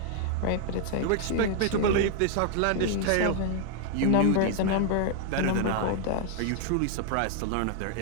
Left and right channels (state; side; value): different; both; correlation -0.01